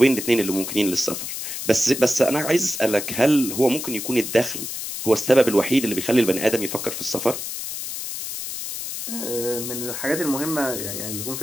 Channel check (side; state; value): left; noise; hiss, 6 dB below the sound